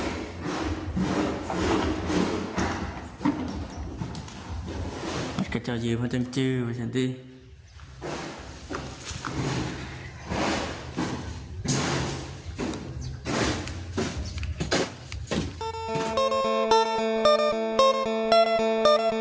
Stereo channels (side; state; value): both; identical; correlation 1.00